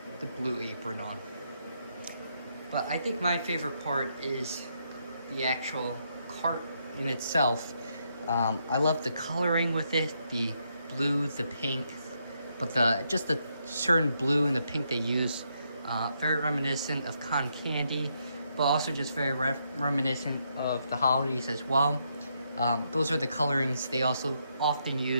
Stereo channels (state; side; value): inverted; both; correlation -0.78